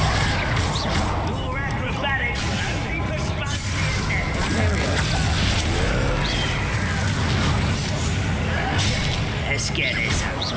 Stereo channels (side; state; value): both; identical; correlation 1.00